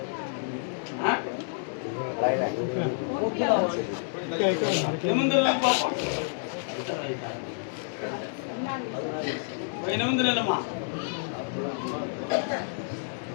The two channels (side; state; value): right; silent; digital silence